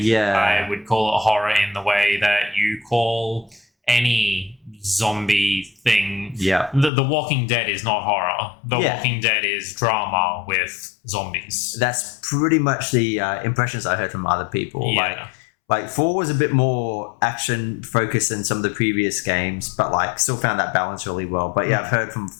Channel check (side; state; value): right; drops out; at 6.9 s